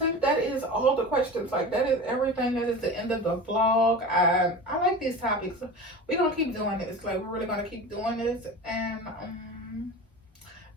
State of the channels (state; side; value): normal; both; correlation 0.32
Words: think that is all the questions. Like, that is everything. That is the end of the vlog. I like these topics. We're gonna keep doing this. Like, we're really gonna keep doing this. And